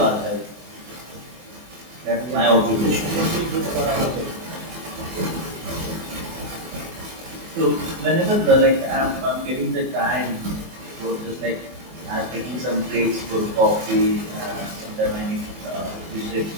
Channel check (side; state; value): left; late; 24 ms